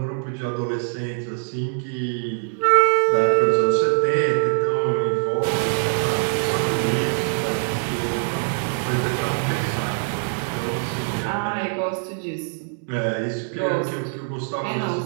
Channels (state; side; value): silent; left; 63 dB below the other